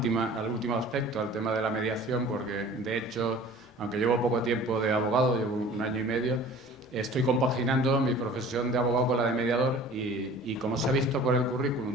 aspecto, al tema de la mediación, porque, de hecho, aunque llevo poco tiempo de abogado, llevo 1 año y medio, estoy compaginando mi profesión de abogado con la de mediador y como se ha visto por el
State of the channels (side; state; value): both; normal; correlation 0.45